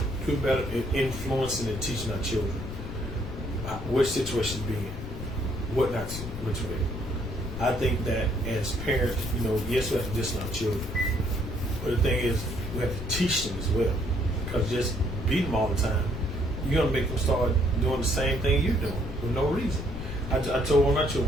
do better in influencing and teaching our children which situations to be in, what not to, which way. I think that as parents, yes, we have to discipline our children, but the thing is, we have to teach them as well. Because just beat them all the time, you're gonna make them start doing the same thing you're doing for no reason. I told one of my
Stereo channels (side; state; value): left; noise; rumble, 8 dB below the sound